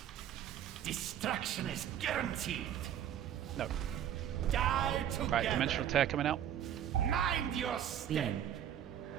Destruction is guaranteed. No. Die together. Right, Dimensional Tear coming out. Mind your step. Beam.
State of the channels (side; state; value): left; quieter; 10.1 dB